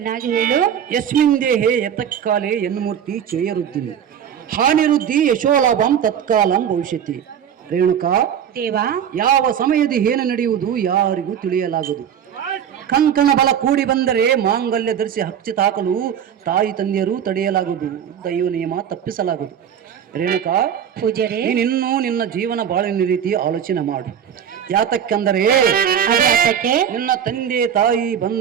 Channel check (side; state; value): left; quieter; 8.8 dB